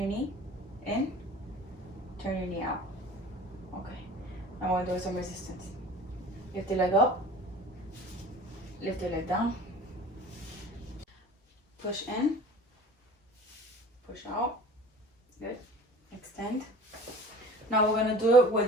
knee in. Turn your knee out. Okay. I want to do some resistance. Lift your leg up. Lift your leg down. Push in. Push out. Good. Extend. Now we're going to do it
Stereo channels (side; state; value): both; normal; correlation 0.43